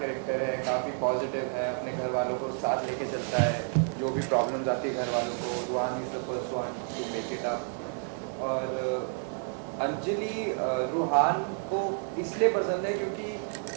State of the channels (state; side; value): silent; left; 55 dB below the other